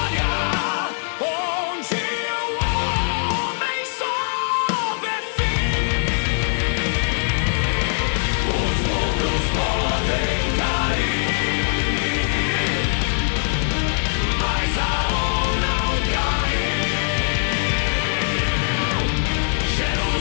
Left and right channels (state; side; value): silent; right; 58 dB below the other